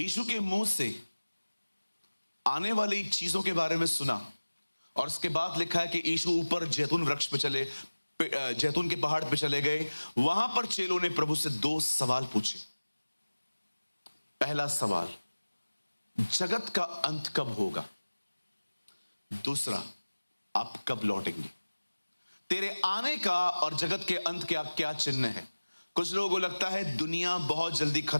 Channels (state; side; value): inverted; both; correlation -1.00